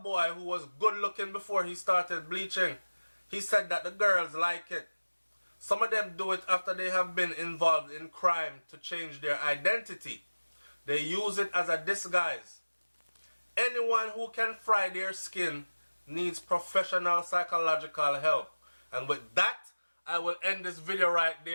boy who was good looking before he started bleaching. He said that the girls like it. Some of them do it after they have been involved in crime to change their identity. They use it as a disguise. Anyone who can fry their skin needs professional psychological help. And with that, I will end this video right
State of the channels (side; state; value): both; inverted; correlation -1.00